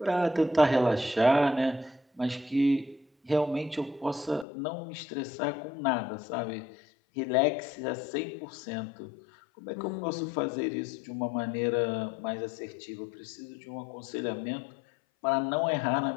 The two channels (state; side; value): drops out; right; at 4.5 s